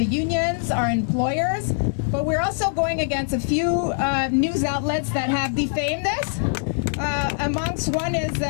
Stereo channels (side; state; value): right; silent; digital silence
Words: unions, our employers, but we're also going against a few news outlets that have defamed us. Amongst one is